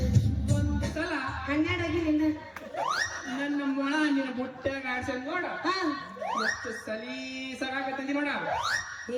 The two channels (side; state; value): both; identical; correlation 1.00